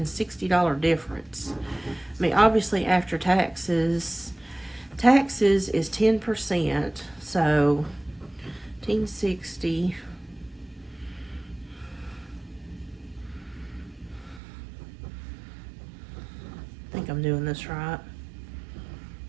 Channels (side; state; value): left; drops out; at 14.4 s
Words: difference. I mean, obviously after taxes is 10%. So $1,560. I think I'm doing this right.